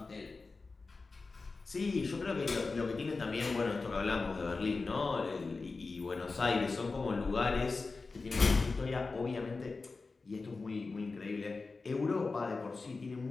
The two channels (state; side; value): quieter; right; 4.0 dB